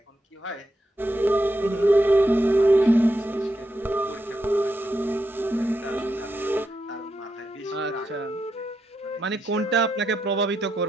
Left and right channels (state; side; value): normal; both; correlation 0.84